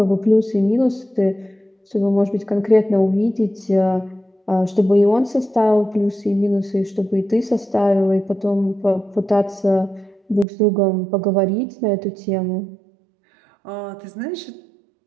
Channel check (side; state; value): left; drops out; at 10.5 s